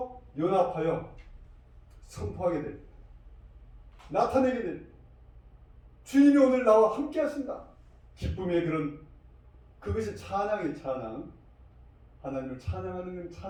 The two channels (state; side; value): identical; both; correlation 1.00